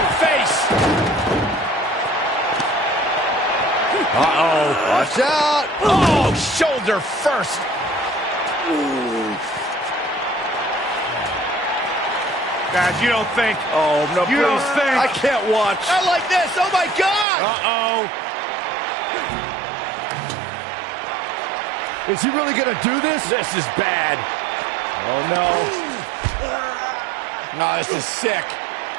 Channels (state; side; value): drops out; left; at 17.2 s